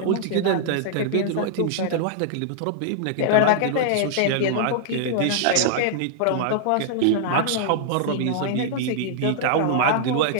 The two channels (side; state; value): both; different; correlation -0.01